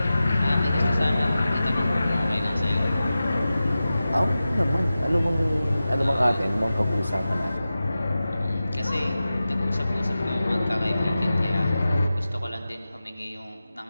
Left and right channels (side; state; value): both; inverted; correlation -0.94